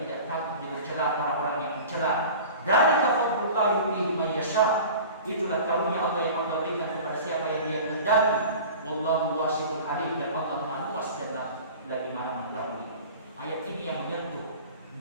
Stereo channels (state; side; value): inverted; both; correlation -0.39